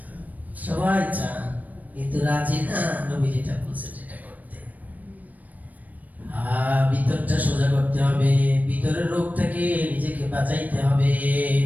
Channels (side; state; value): left; late; 0.077 ms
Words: সবাই চান, কিন্তু রাজি না নবী যেটা বলছে সেটা করতে। ভিতরটা সোজা করতে হবে, ভিতরের রোগ থেকে নিজেকে বাঁচাইতে হবে।